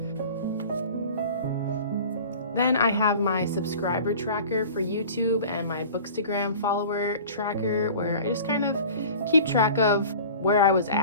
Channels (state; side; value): inverted; both; correlation -0.42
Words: Then I have my subscriber tracker for YouTube and my Bookstagram follower tracker, where I just kind of keep track of where I was